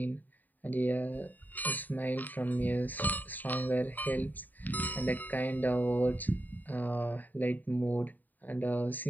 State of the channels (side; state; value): right; late; 0.086 ms